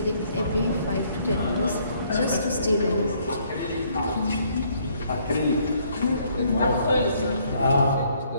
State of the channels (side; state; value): both; inverted; correlation -0.66